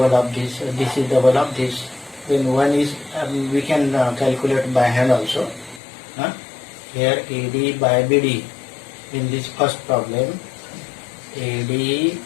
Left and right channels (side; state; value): right; drops out; at 5.8 s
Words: of this. This is double of this. Then one is we can calculate by hand also. Here AD by BD. In this first problem, AD